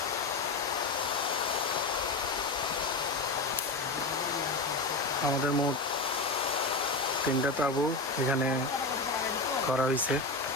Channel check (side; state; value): right; quieter; 3.3 dB